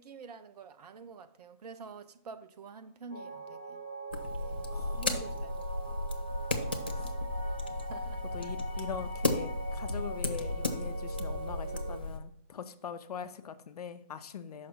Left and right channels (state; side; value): inverted; both; correlation -0.60